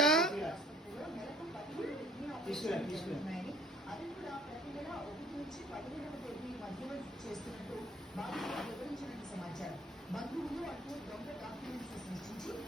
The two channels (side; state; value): both; normal; correlation 0.56